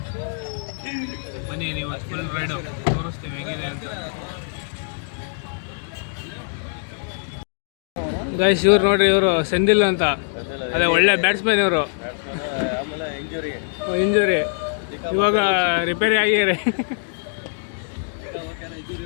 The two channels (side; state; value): right; silent; digital silence